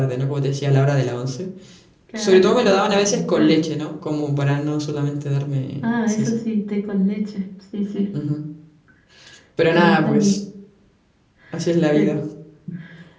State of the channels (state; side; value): identical; both; correlation 1.00